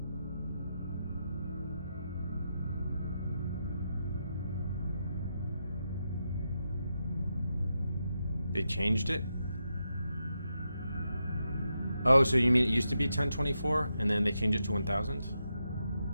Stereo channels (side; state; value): both; inverted; correlation -0.85